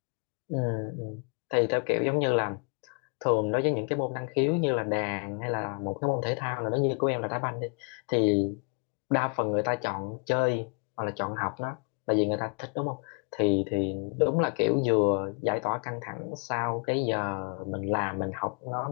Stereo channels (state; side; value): quieter; right; 36.4 dB